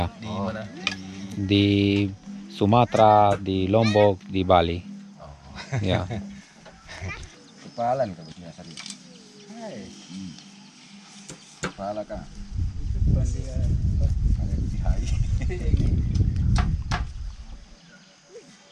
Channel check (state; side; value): identical; both; correlation 1.00